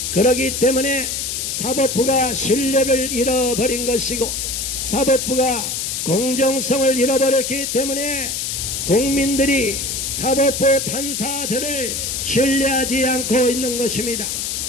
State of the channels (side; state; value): left; noise; hiss, 3 dB below the sound